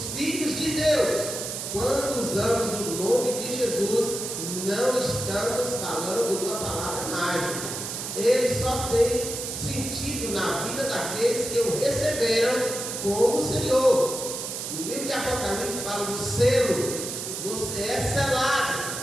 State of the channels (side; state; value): right; noise; hiss, 5 dB below the sound